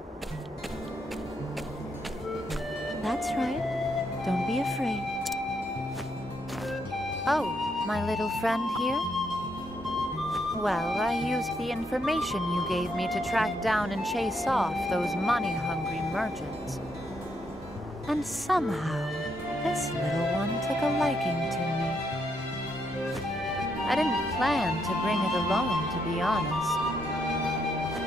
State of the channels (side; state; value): both; normal; correlation 0.77